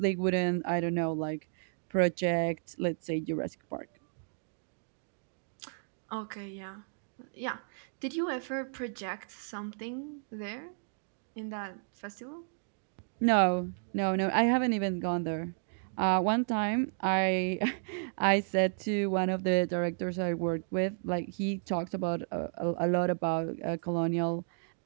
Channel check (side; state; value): left; silent; digital silence